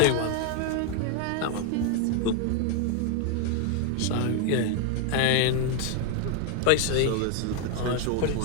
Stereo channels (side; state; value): both; different; correlation 0.01